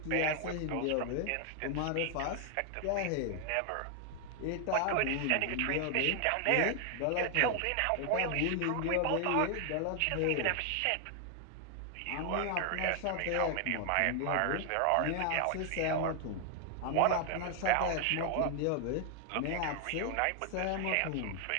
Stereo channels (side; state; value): both; different; correlation 0.00